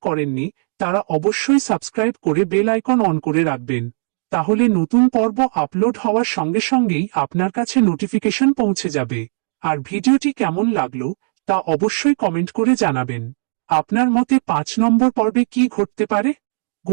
করেননি তারা অবশ্যই সাবস্ক্রাইব করে বেল আইকন অন করে রাখবেন, তাহলে নতুন পর্ব আপলোড হওয়ার সঙ্গে সঙ্গেই আপনার কাছে নোটিফিকেশন পৌঁছে যাবে। আর ভিডিওটি কেমন লাগলো তা অবশ্যই কমেন্ট করে জানাবেন। আপনার মতে 5 নম্বর পর্বে কি ঘটতে পারে?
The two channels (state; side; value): silent; left; digital silence